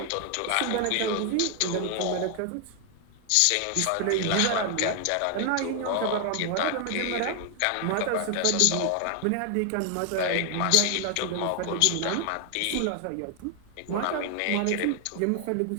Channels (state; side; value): different; both; correlation 0.00